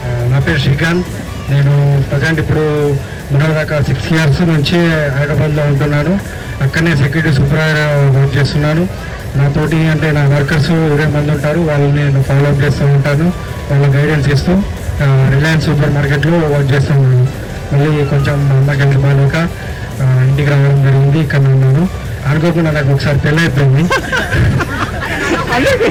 నా పేరు శ్రీకాంత్. నేను ప్రజెంట్ ఇప్పుడు మొన్నదాకా 6 years నుంచి హైదరాబాద్లో ఉంటున్నాను. అక్కడనే సెక్యూరిటీ సూపర్వైజర్ వర్క్ చేస్తున్నాను. నాతోటి అంటే నా వర్కర్స్ 20 మంది ఉంటారు. వాళ్ళని నేను ఫాలో అప్ చేస్తూ ఉంటాను, వాళ్ళ గైడెన్స్ ఇస్తూ రిలయన్స్ సూపర్ మార్కెట్లో వర్క్ చేస్తూ ఉన్నాను. మళ్ళీ కొంచెం అమ్మకి బాగాలేక ఇంటికి రావడం జరిగింది. ఇక్కడ ఉన్నాను. అనుకోకుండా నాకు ఒకసారి పెళ్ళి అయిపోయింది.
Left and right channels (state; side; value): identical; both; correlation 1.00